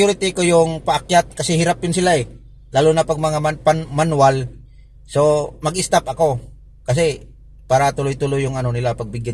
ko yung paakyat kasi hirap yun sila lalo na pag mga manual. So mag-stop ako kasi para tuloy-tuloy yung nila,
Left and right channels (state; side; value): identical; both; correlation 1.00